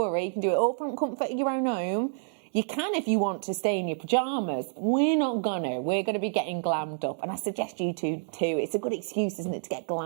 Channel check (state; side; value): silent; left; digital silence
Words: You can do it all from comfort of your own home. You can, if you want, to stay in your pyjamas. We're not gonna. We're going to be getting glammed up. And I suggest you too. It's a good excuse, isn't it, to get